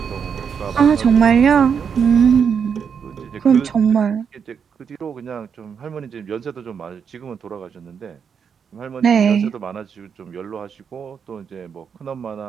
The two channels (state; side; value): quieter; left; 6.9 dB